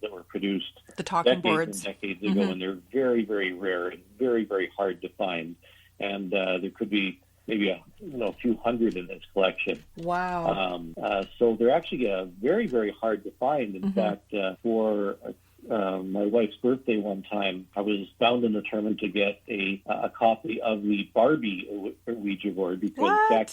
that were produced the talking boards decades ago, and they're very, very rare and very, very hard to find. And there could be maybe a few hundred in his collection. Wow. So they're actually very, very hard to find. In fact, for my wife's birthday one time, I was bound and determined to get a copy of the Barbie Ouija board, because back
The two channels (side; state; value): both; identical; correlation 1.00